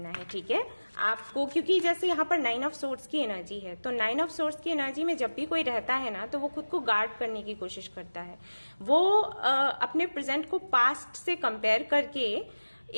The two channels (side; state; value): both; inverted; correlation -1.00